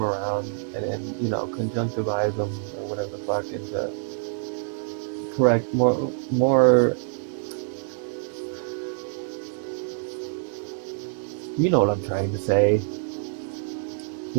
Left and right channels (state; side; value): silent; left; 61 dB below the other